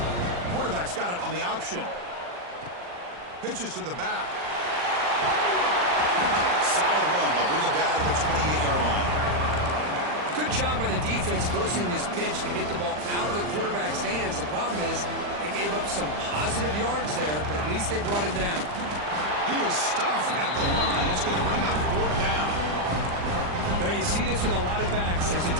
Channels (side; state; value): left; late; 40 ms